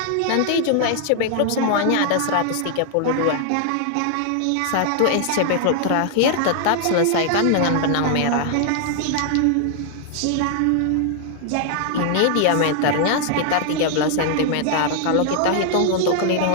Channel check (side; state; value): both; different; correlation 0.00